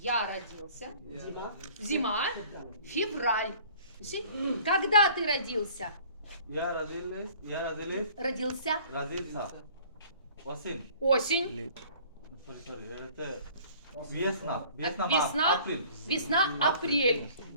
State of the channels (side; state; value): both; inverted; correlation -0.51